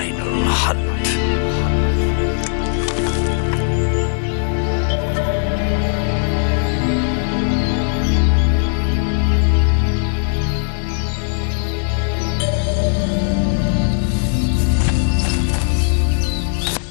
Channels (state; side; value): silent; right; 66 dB below the other